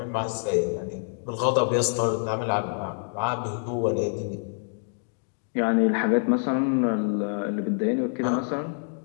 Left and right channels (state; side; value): silent; right; digital silence